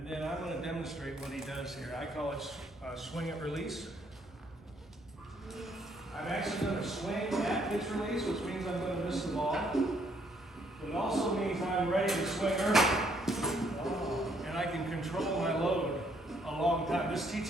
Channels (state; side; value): normal; both; correlation 0.69